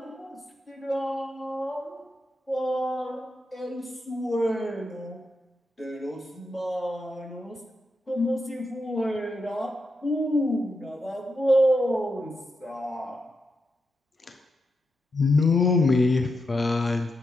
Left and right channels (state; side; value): normal; both; correlation 0.86